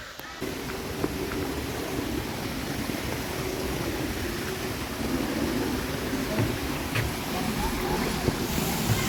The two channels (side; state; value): both; identical; correlation 1.00